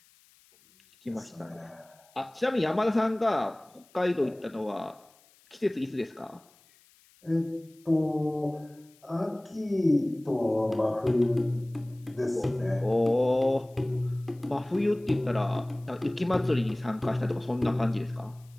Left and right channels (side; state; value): left; noise; hiss, 30 dB below the sound